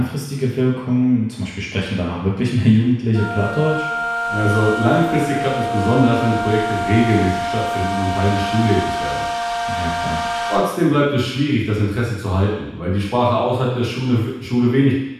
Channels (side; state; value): both; identical; correlation 1.00